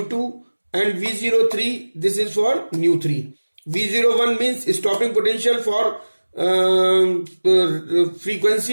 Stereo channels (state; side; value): inverted; both; correlation -1.00